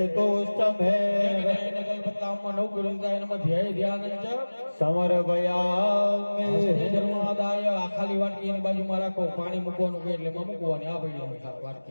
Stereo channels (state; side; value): inverted; both; correlation -1.00